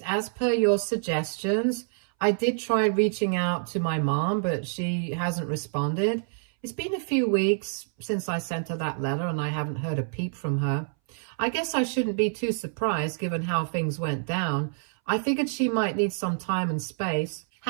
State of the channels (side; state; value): left; silent; 59 dB below the other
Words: as per your suggestions, I did try reaching out to my mom, but she hasn't responded. It's been a few weeks since I sent her that letter and I haven't heard a peep from her. I guess I shouldn't be too surprised given how things went down. I figured she might need some time and space.